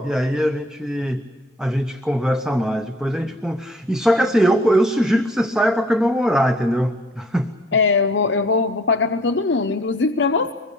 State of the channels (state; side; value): normal; both; correlation 0.56